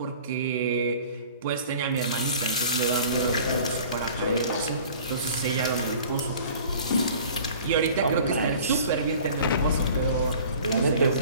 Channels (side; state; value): both; inverted; correlation -0.46